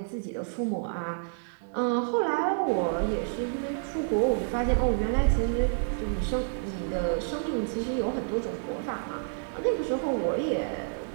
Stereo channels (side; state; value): left; silent; digital silence